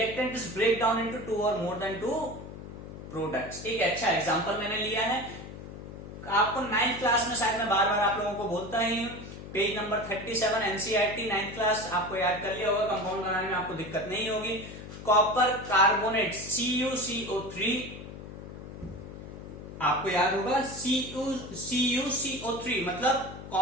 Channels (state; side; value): noise; left; hum, 12 dB below the sound